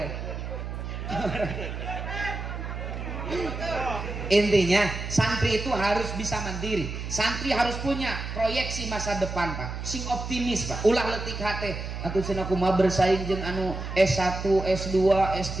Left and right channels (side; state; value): right; noise; hum, 6 dB below the sound